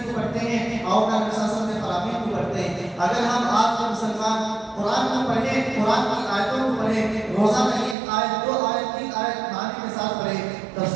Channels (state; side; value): drops out; left; at 8.0 s